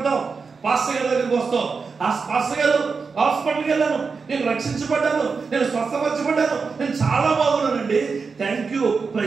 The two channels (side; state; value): left; quieter; 5.0 dB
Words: పాస్టర్ గారి దగ్గరికి వస్తావు. ఆ పాస్టర్ గారు హాస్పిటల్కి వెళ్ళాను, నేను రక్షించబడ్డాను, నేను స్వస్థపరచబడ్డాను, నేను చాలా బాగున్నానండి, thank you,